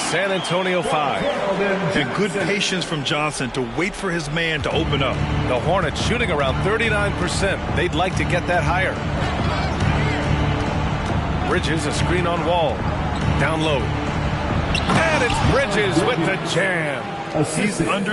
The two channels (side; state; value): both; identical; correlation 1.00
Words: Antonio 5. And good patience from Johnson to wait for his man to open up. The Hornets shooting around 39%. They'd like to get that higher. Bridges, a screen on Wall. Down low. And it's Bridges with the jam. He's